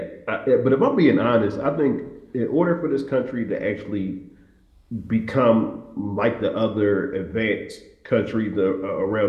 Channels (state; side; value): identical; both; correlation 1.00